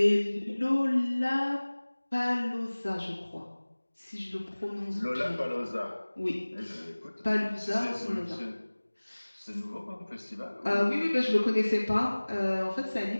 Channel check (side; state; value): both; inverted; correlation -1.00